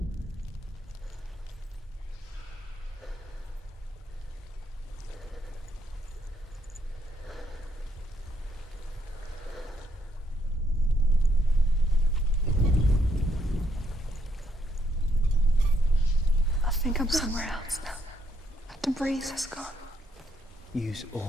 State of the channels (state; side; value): normal; both; correlation 0.73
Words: I think I'm somewhere else now. The breeze has gone. Use